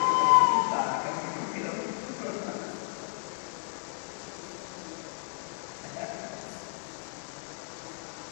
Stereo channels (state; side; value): silent; right; 56 dB below the other